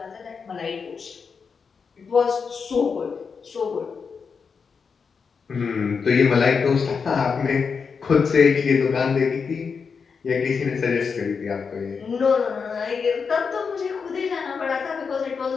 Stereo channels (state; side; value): quieter; right; 5.6 dB